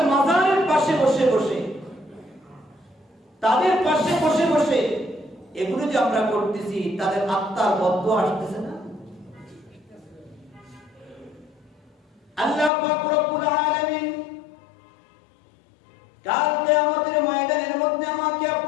মাজারের পাশে বসে বসে, তাদের পাশে বসে বসে এগুলো যে আমরা করতেছি, তাদের আত্মার বদদোয়া আসতেছে না? আল্লাহ পাক রব্বুল আলামিন কাল কিয়ামতের ময়দানের মধ্যে আমাকে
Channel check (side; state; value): right; drops out; at 12.7 s